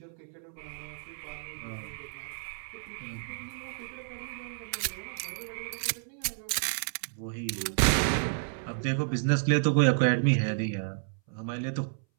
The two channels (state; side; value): silent; left; 57 dB below the other